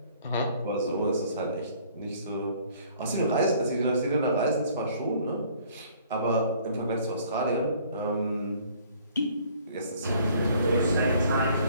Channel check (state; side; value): inverted; both; correlation -0.57